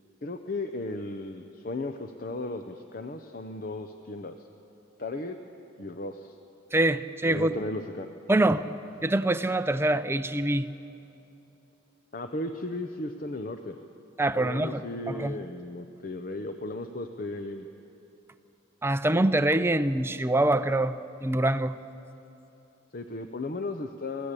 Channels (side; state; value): both; normal; correlation 0.66